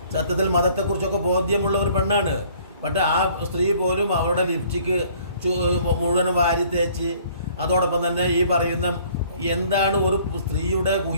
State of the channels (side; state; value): both; inverted; correlation -0.57